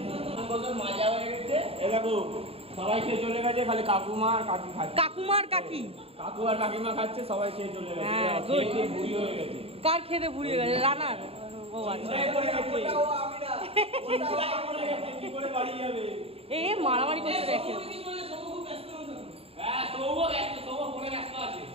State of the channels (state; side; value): late; left; 0.28 ms